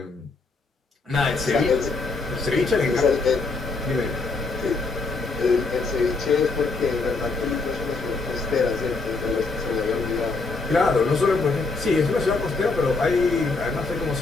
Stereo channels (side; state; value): right; quieter; 4.0 dB